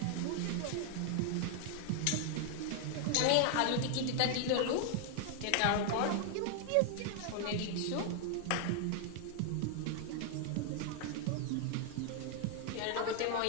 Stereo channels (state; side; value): different; both; correlation 0.00